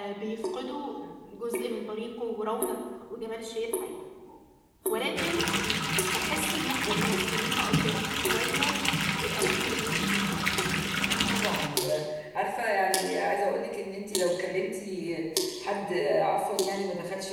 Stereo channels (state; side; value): identical; both; correlation 1.00